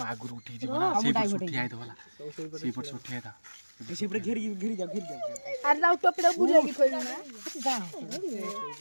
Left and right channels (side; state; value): both; inverted; correlation -1.00